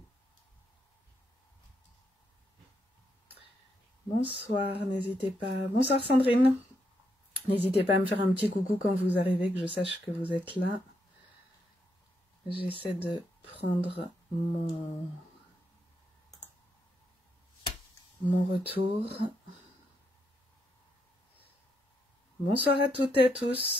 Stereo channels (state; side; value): normal; both; correlation 0.79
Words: Bonsoir, n'hésitez pas. Bonsoir Sandrine. N'hésitez pas à me faire un petit coucou quand vous arrivez, que je sache que vous êtes là. J'essaie de prendre mon retour. Bonsoir à toutes et à